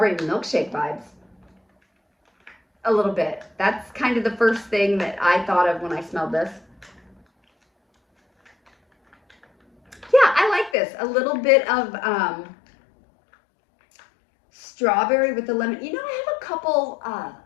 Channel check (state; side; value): drops out; right; at 10.8 s